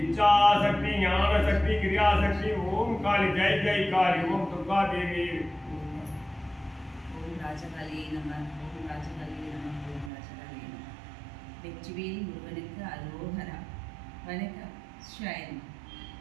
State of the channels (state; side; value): drops out; left; at 10.1 s